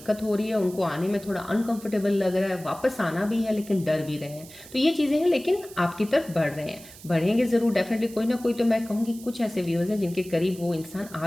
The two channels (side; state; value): right; noise; hiss, 19 dB below the sound